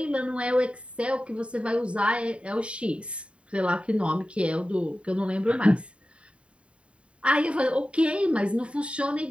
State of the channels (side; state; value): left; late; 0.060 ms